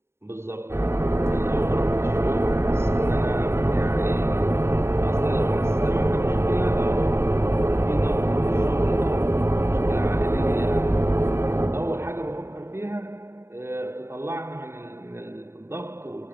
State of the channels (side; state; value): left; late; 0.12 ms